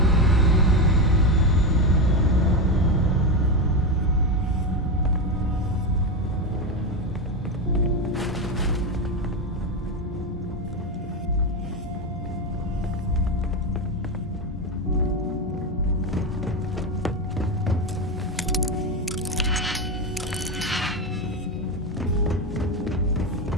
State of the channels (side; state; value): both; normal; correlation 0.13